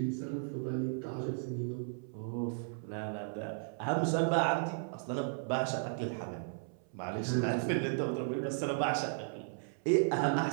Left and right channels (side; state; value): left; silent; 54 dB below the other